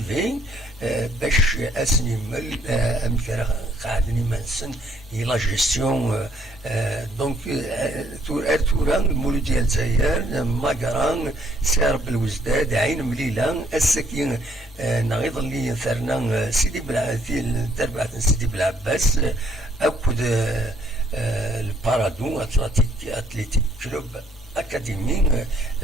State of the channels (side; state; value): both; normal; correlation 0.65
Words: باش اسنيمل امثال قاعدني منسن لا جيستيون دونك توران المولود ديال الجزائر ماكران سارب الوزداد عين مليله السكين نغيض اللي ثرنا سيدي بلعثيل تربعة سيدي بالعباس اكد البارادو اتليتيك كلوب اكاديمي